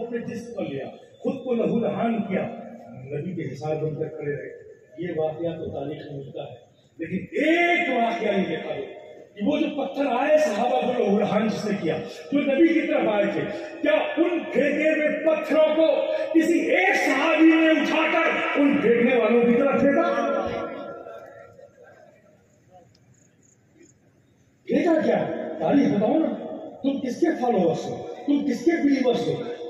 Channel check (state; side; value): identical; both; correlation 1.00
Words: اپنے جسم پر لیا، خود کو لہو لہان کیا، نبی کے حصار بن کر کھڑے رہے۔ یہ واقعہ تو تاریخ میں ملتا ہے، لیکن ایک واقعہ نہیں دیکھا گیا کہ وہ جو پتھر آئے صحابہ کو لہو لہان جس نے کیا، جو نبی کی طرف آئے تھے، کیا ان پھینکے ہوئے پتھروں کو کسی ایک صحابی نے اٹھا کر ان پھینکنے والوں کی طرف پھینکا؟ پھینکا کیا؟ تاریخ بتاؤ نا، تم کس کے فالوورس ہو، تم کس کے بلیورس ہو،